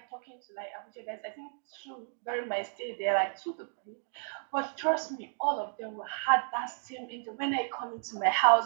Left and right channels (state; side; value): silent; left; digital silence